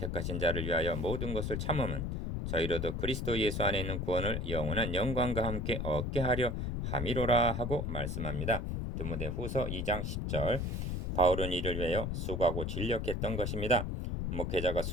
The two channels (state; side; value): noise; left; rumble, 2 dB below the sound